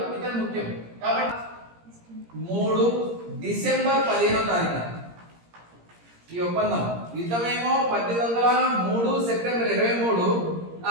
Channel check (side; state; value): left; late; 17 ms